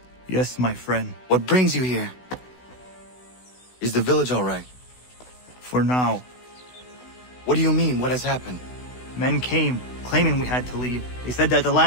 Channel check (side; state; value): right; late; 16 ms